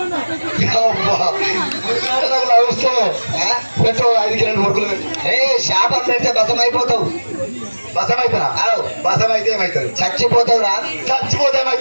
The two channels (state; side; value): inverted; both; correlation -1.00